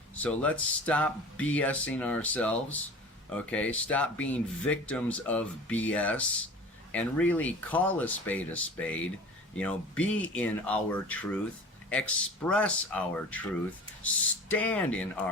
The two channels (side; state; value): both; normal; correlation 0.40